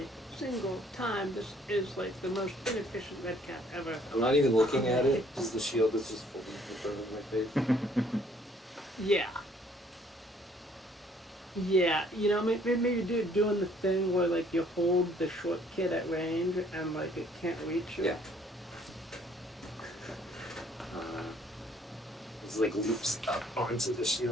single time. This is like the most inefficient Redcap ever. I'm not even looking at it because the shield is just fully in front of my face. Yeah. Yeah, you know, maybe doing the thing where like you hold the short kid at range and like it can't reach you. Yeah. It's like leaps up onto the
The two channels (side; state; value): both; normal; correlation 0.62